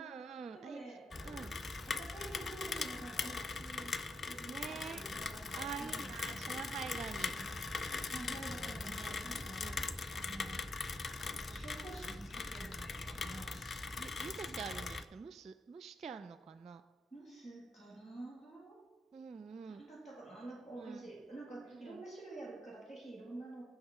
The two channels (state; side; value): normal; both; correlation 0.80